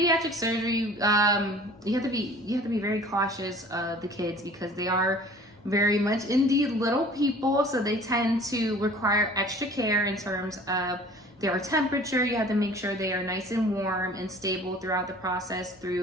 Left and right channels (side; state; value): both; normal; correlation 0.47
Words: surgery, you have to be very cautious of the kids because they are very much indeed little people. So they tend to require extra care in terms of their temperature. You have to make sure they are nice and warm and stable throughout the process